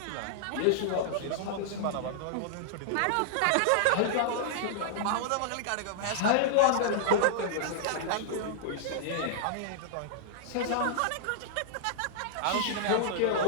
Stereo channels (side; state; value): both; different; correlation -0.01